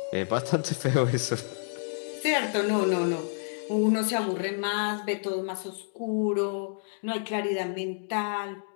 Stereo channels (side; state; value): right; silent; digital silence